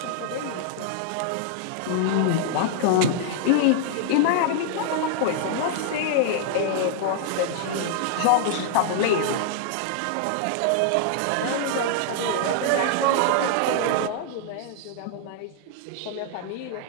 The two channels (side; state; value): both; different; correlation -0.01